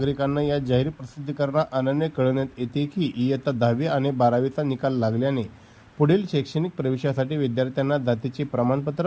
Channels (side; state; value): both; identical; correlation 1.00